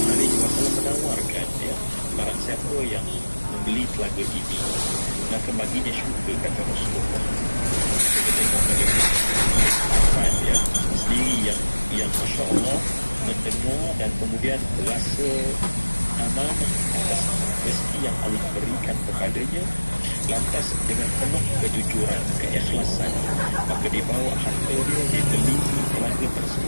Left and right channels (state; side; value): inverted; both; correlation -1.00